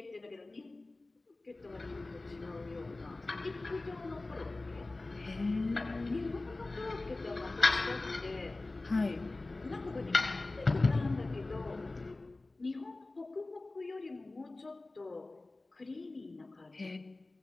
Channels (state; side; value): quieter; right; 3.1 dB